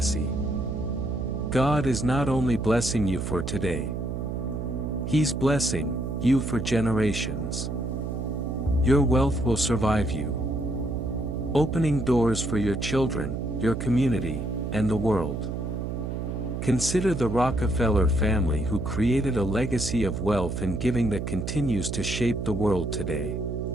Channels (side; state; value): right; noise; hum, 4 dB below the sound